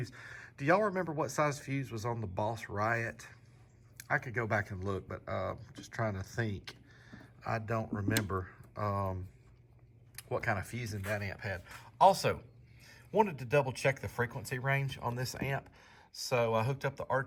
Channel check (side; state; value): both; identical; correlation 1.00